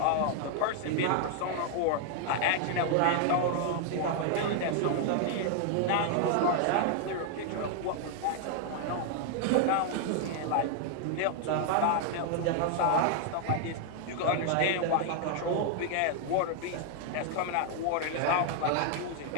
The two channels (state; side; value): different; both; correlation 0.00